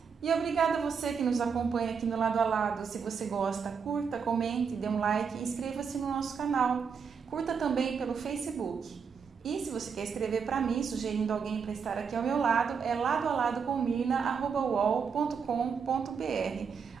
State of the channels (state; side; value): quieter; left; 6.2 dB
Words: E obrigada a você que nos acompanha aqui no Lado a Lado. Se você gosta, curta, comente, dê um like e inscreva-se no nosso canal. Curta também pelo Facebook. E se você quer escrever para mim, sugerindo alguém para estar aqui ao meu lado, é ladoaladocomirna@uol.com.br.